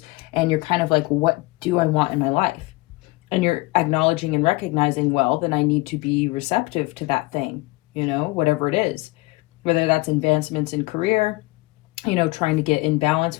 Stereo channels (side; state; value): right; quieter; 22.0 dB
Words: And you're kind of like, what do I want in my life? And you're acknowledging and recognizing, well, then I need to be receptive to that thing, you know, whatever it is. Whether that's advancements in career, you know, trying to get in balance